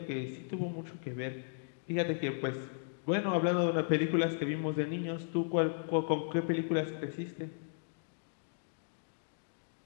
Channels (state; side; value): silent; right; digital silence